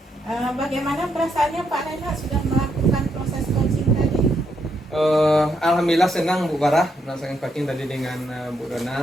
Bagaimana perasaannya Pak Renat sudah melakukan proses coaching tadi? Alhamdulillah senang Bu Barah melaksanakan coaching tadi dengan Bu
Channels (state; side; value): normal; both; correlation 0.77